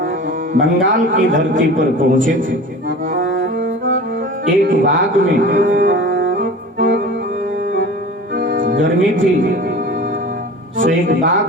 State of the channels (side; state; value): both; normal; correlation 0.37